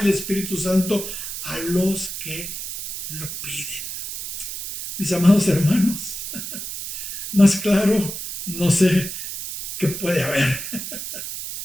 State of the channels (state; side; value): noise; right; hiss, 7 dB below the sound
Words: Espíritu Santo a los que lo piden. Mis amados hermanos, más claro, no sé qué puede haber.